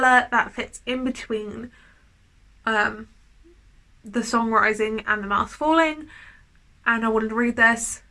that fits in between the songwriting and the mask falling, and I wanted to read this.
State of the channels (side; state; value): both; identical; correlation 1.00